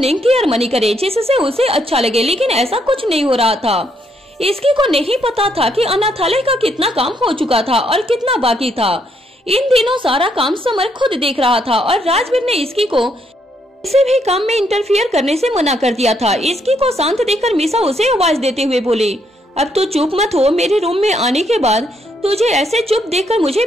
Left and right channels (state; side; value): normal; both; correlation 0.74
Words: की अर्मनी करे जिससे उसे अच्छा लगे, लेकिन ऐसा कुछ नहीं हो रहा था। इसकी को नहीं पता था कि अनाथालय का कितना काम हो चुका था और कितना बाकी था। इन दिनों सारा काम समर खुद देख रहा था और राजवीर ने इसकी को किसी भी काम में इंटरफियर करने से मना कर दिया था। इसकी को शांत देखकर मीसा उसे आवाज देते हुए बोली, अब तो चुप मत हो, मेरे रूम में आने के बाद तुझे ऐसे चुप देखकर मुझे